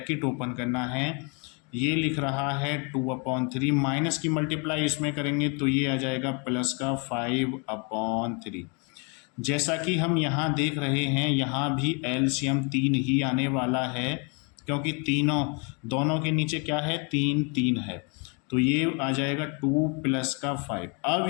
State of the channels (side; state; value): right; quieter; 34.3 dB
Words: ओपन करना है। ये लिख रहा है 2/3, माइनस की मल्टीप्लाई इसमें करेंगे तो ये आ जाएगा प्लस का 5/3। जैसा कि हम यहाँ देख रहे हैं यहाँ भी एलसीएम 3 ही आने वाला है, क्योंकि दोनों के नीचे क्या है, 3 है, तो ये आ जाएगा 2 प्लस का 5। अब